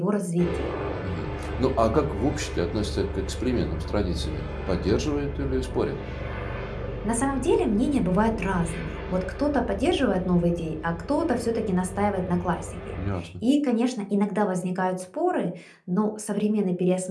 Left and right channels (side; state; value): both; identical; correlation 1.00